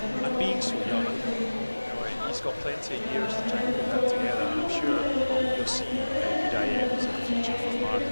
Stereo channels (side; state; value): both; inverted; correlation -1.00